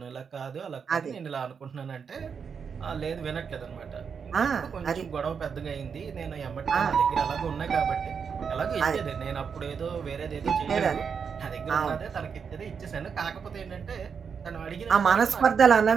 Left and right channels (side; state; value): left; quieter; 6.4 dB